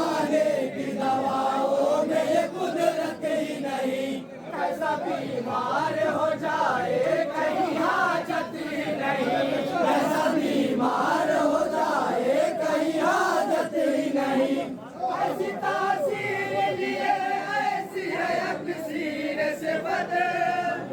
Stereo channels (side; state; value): both; identical; correlation 1.00